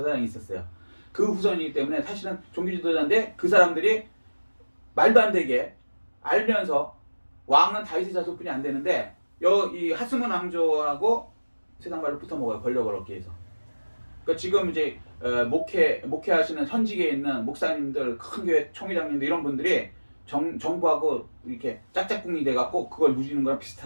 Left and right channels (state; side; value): inverted; both; correlation -1.00